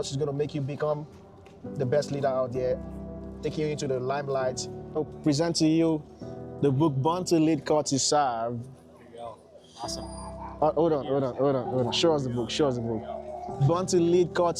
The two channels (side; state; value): both; identical; correlation 1.00